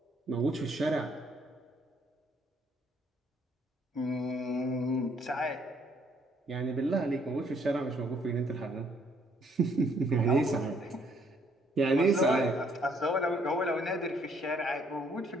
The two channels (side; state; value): both; normal; correlation 0.66